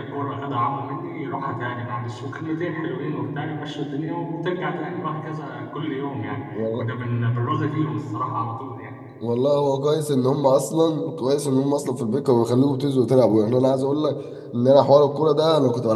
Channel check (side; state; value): both; identical; correlation 1.00